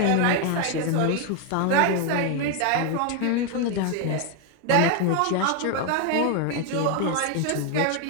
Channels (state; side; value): different; both; correlation 0.01